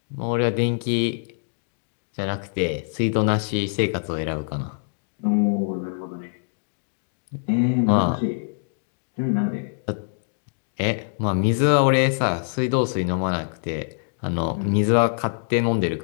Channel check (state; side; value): silent; right; digital silence